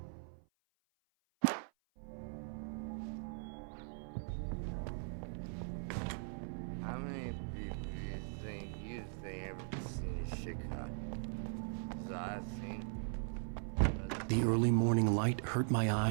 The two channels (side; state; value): left; silent; 51 dB below the other